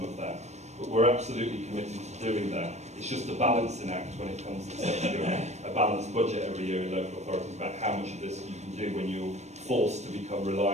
of that. But we're absolutely committed to doing that. It's just a balancing act when it comes to setting a balanced budget every year in local authorities about how much of this you can do when you're forced to become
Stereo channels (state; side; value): late; left; 0.32 ms